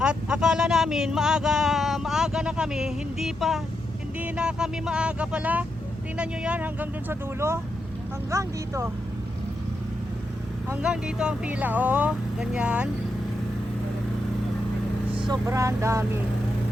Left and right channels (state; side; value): normal; both; correlation 0.84